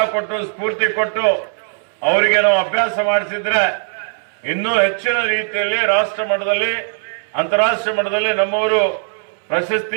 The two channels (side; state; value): left; silent; 67 dB below the other